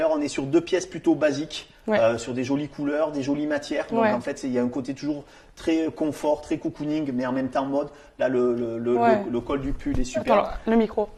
on est sur deux pièces plutôt basiques, sur des jolies couleurs, des jolies matières. Donc en fait, il y a un côté toujours très confort, très cocooning, mais en même temps mode. Là, le col du pull est super. Alors, le micro.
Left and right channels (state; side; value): identical; both; correlation 1.00